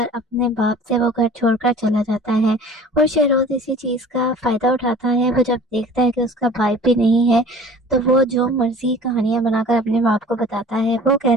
अपने बाप से वो घर छोड़कर चला जाता है। और शहरोज इसी चीज का फायदा उठाता है। वो जब देखता है कि उसका भाई भी नहीं है, तो वो जो मर्जी कहानियां बनाकर अपने बाप को बताता है। वो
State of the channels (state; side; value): normal; both; correlation 0.45